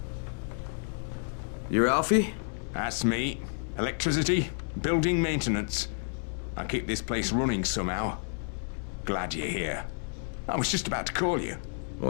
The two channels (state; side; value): silent; right; 58 dB below the other